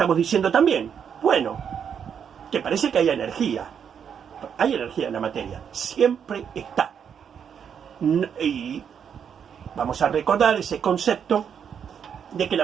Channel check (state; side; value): quieter; left; 7.7 dB